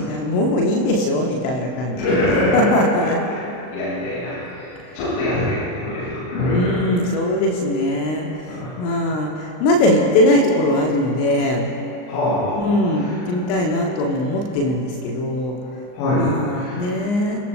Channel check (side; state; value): right; late; 39 ms